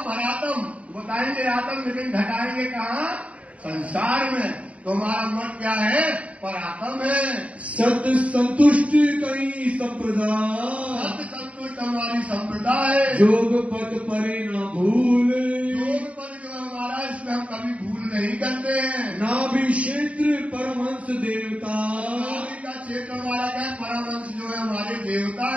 परात्म बताएंगे आत्म, लेकिन घटाएंगे कहाँ? संसार में। तो हमारा मत क्या है? परात्म है। सत्य संतुष्ट कई संप्रदाय, सत्य संतुष्ट हमारी संप्रदाय है। योग पद परे न भूल, योग पद जो हमारा, इसमें हम कभी भूल नहीं करते हैं। नाभि क्षेत्र परमहंस देवता, नाभि का क्षेत्र हमारा क्या है? परमहंस जो है हमारे देवता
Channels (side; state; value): left; late; 0.066 ms